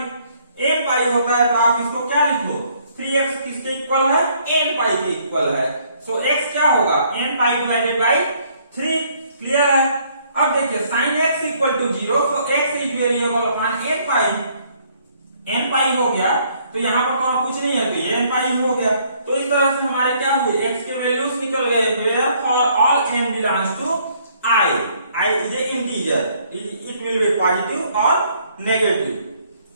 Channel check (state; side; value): inverted; both; correlation -0.65